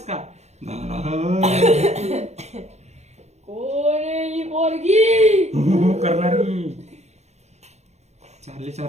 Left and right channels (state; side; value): late; left; 0.32 ms